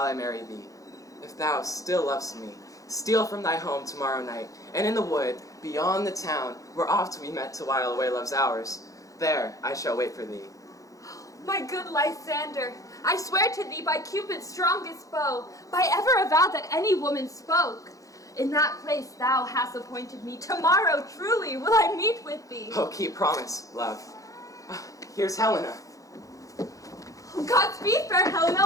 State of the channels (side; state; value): right; late; 0.16 ms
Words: I marry thee. If thou still lovest me, steal from thy home tomorrow night, and in the wood, beyond the town, where oft we met to while away love's hours, there I shall wait for thee. My good Lysander, I swear to thee by Cupid's strongest bow, by ever a vow that any woman spoke. In that place thou hast appointed me, tomorrow truly will I meet with thee. Oh, keep promise, love. Here's Helena. Godspeed, fair